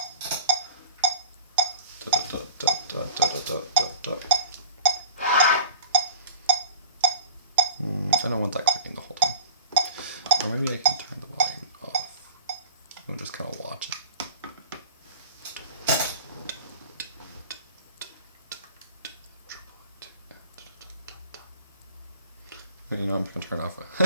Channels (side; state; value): both; inverted; correlation -0.39